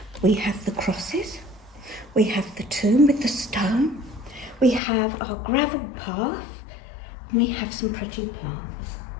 We have the crosses, we have the tomb with the stone, we have our gravel path, and we have some pretty plants.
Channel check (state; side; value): drops out; right; at 4.8 s